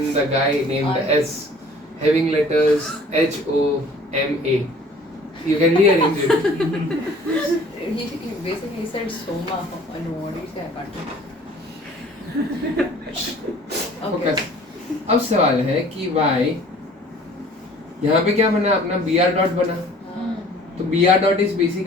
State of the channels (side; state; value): both; normal; correlation 0.51